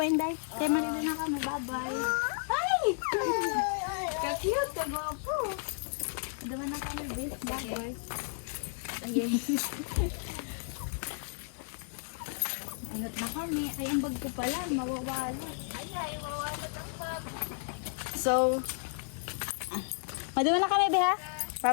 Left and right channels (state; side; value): silent; right; digital silence